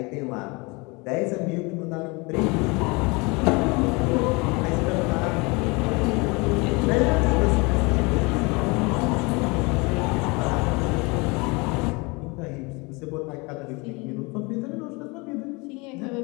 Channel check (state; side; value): quieter; right; 27.2 dB